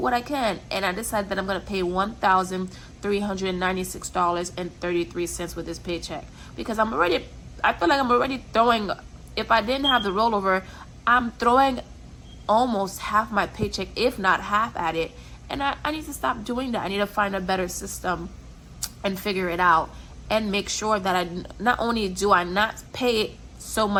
I can. And I decided that I'm going to pay $1,396.33 with this paycheck. Because I feel like I'm already throwing, if I didn't have the rollover, I'm throwing almost half my paycheck, if not half at it. And I need to stop doing that. I need to find a better system and figure it out. And make sure that I not only do I not pay so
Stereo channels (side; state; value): both; identical; correlation 1.00